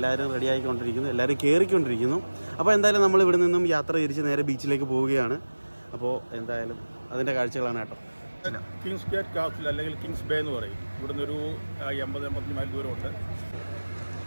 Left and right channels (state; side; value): inverted; both; correlation -1.00